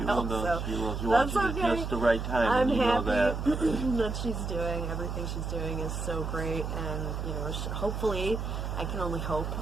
She will. She that's watches okay. at just the right time. I'm and you happy know that. that she's doing everything she's doing is so great, and hopefully, I can only hope,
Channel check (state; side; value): noise; right; hum, 4 dB below the sound